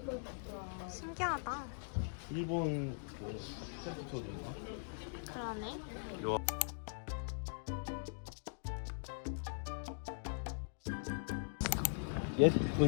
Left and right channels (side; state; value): right; silent; digital silence